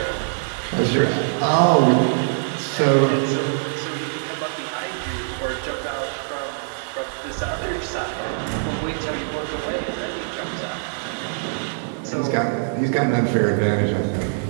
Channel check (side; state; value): left; silent; digital silence